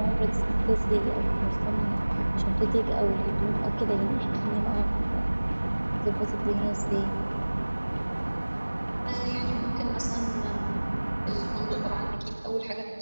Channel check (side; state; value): both; inverted; correlation -1.00